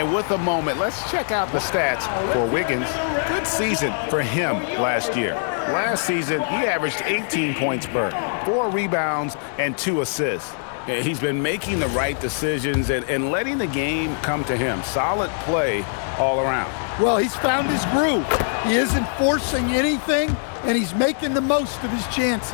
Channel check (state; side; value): silent; right; digital silence